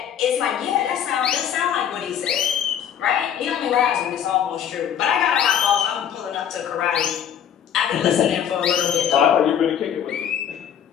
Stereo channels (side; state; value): right; quieter; 9.1 dB